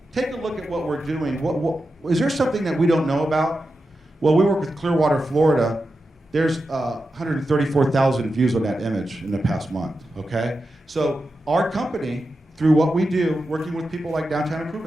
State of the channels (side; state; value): both; normal; correlation 0.90